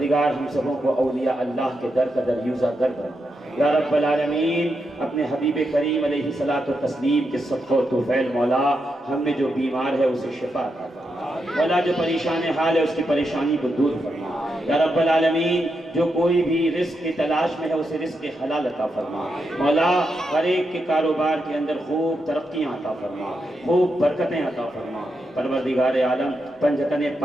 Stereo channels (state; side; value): normal; both; correlation 0.84